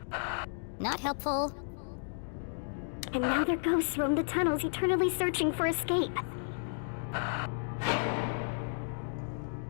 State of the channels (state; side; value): silent; right; digital silence